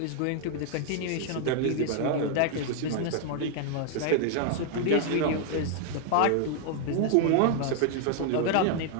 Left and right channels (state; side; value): different; both; correlation 0.00